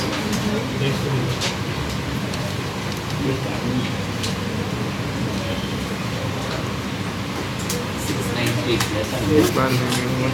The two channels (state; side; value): identical; both; correlation 1.00